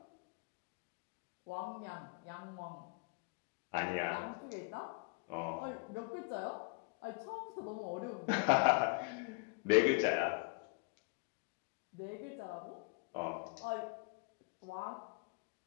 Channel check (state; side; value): quieter; right; 32.2 dB